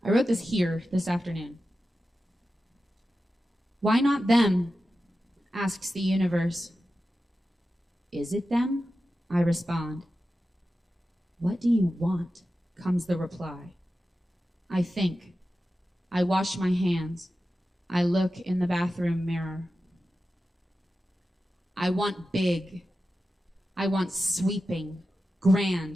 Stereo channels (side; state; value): both; normal; correlation 0.92